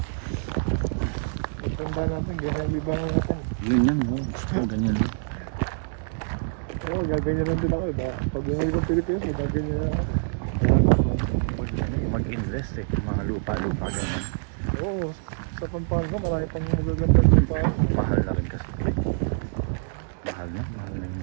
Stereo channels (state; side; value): silent; left; digital silence